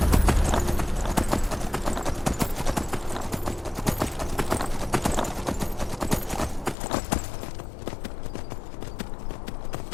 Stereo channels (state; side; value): drops out; right; at 6.8 s